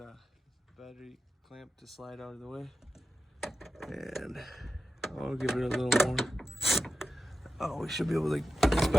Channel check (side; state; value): both; normal; correlation 0.91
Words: battery clamp to slide out of the way. And I'll give it a little more. Oh, we should be able to, this